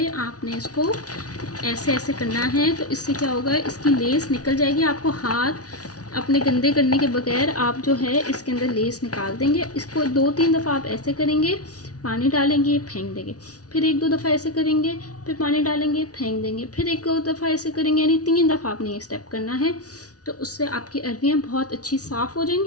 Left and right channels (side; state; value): right; late; 0.68 ms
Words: आपने इसको ऐसे ऐसे करना है। तो इससे क्या होगा, इसकी लेस निकल जाएगी। आपको हाथ अपने गंदे करने के बगैर आप जो है इसके अंदर लेस निकाल देंगे। इसको 2-3 दफ़ा आप ऐसे करेंगे, पानी डालेंगे, फेंक देंगे, फिर 1-2 दफ़ा ऐसे करेंगे, फिर पानी डालेंगे, फेंक देंगे, फिर 1-2 दफ़ा ऐसे करेंगे, यानी 3 दफ़ा आपने ये स्टेप करना है। तो उससे आपकी अरवियाँ बहुत अच्छी साफ़ हो